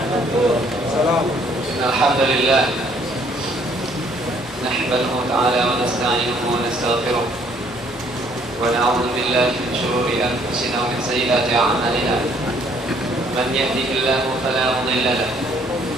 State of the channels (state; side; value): normal; both; correlation 0.63